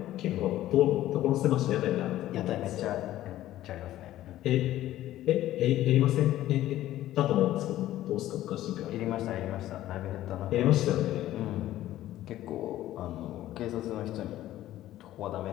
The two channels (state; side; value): quieter; right; 14.1 dB